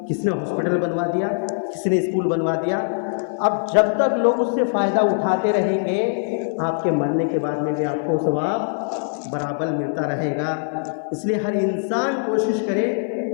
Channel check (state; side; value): silent; right; 56 dB below the other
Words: کسی نے ہاسپٹل بنوا دیا، کسی نے اسکول بنوا دیا۔ اب جب تک لوگ اس سے فائدہ اٹھاتے رہیں گے، آپ کے مرنے کے بعد میں بھی آپ کو ثواب برابر ملتا رہے گا۔ اس لیے ہر انسان کوشش کرے